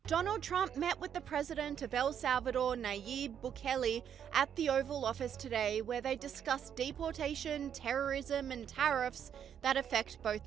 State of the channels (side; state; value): left; quieter; 8.8 dB